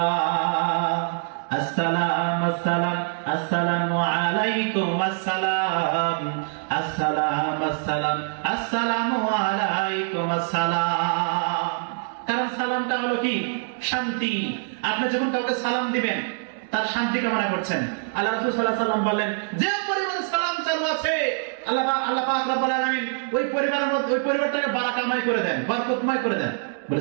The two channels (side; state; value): left; silent; digital silence